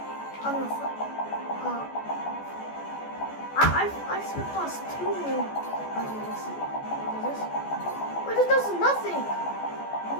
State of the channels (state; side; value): late; right; 14 ms